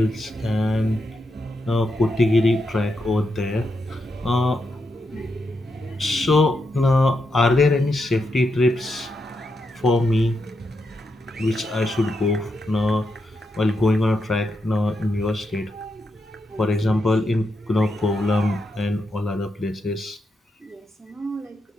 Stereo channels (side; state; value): both; normal; correlation 0.83